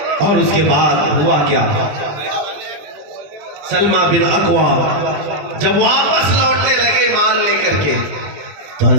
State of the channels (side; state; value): left; late; 20 ms